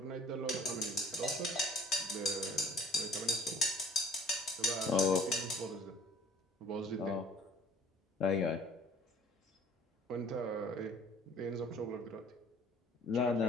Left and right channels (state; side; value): normal; both; correlation 0.50